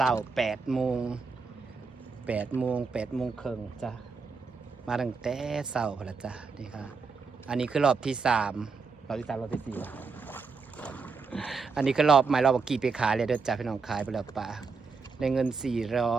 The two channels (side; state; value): left; quieter; 4.8 dB